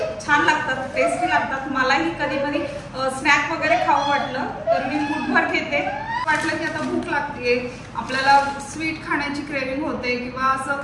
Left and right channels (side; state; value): both; identical; correlation 1.00